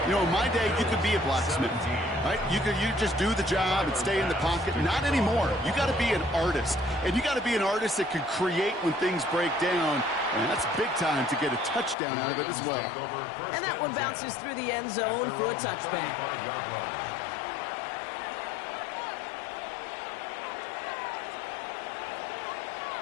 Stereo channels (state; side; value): drops out; right; at 12.0 s